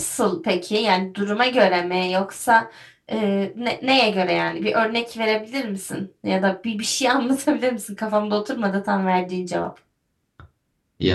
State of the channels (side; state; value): both; identical; correlation 1.00